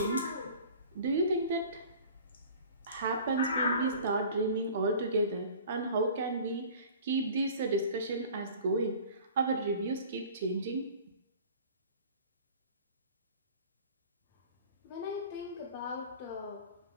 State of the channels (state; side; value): inverted; both; correlation -0.44